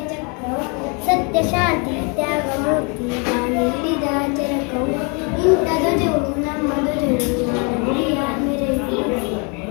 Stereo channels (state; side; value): quieter; right; 32.8 dB